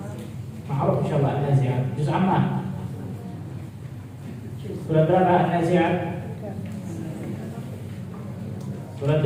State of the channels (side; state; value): both; identical; correlation 1.00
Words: Ma'ruf insyaallah An-Nazi'at. Juz Ammah. Surat berapa An-Nazi'at? Surat